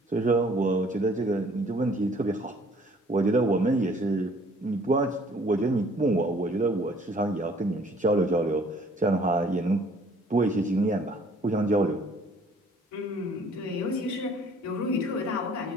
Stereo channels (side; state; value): both; normal; correlation 0.57